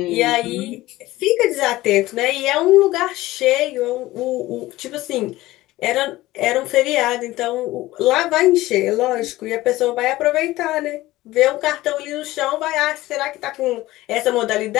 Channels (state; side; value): quieter; right; 17.5 dB